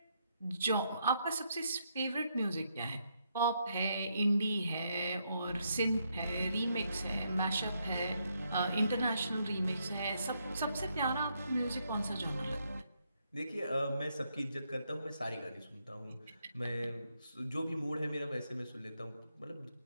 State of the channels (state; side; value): inverted; both; correlation -0.77